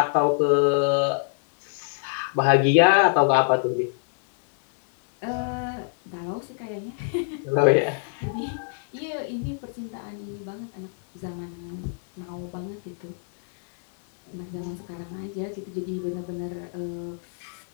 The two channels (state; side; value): silent; right; digital silence